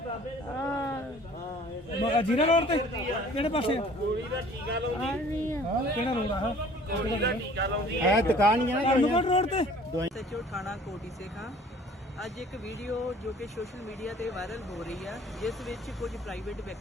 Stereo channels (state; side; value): normal; both; correlation 0.51